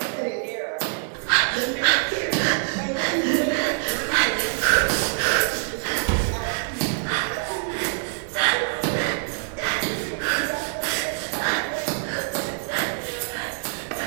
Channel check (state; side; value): silent; left; digital silence